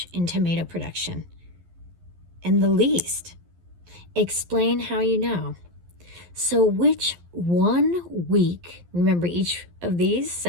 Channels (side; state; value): left; late; 11 ms